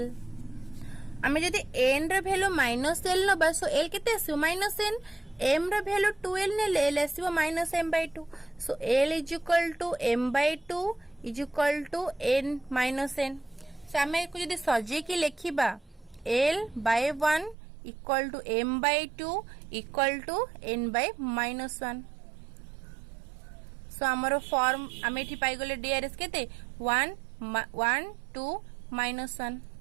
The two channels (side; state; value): left; drops out; at 17.6 s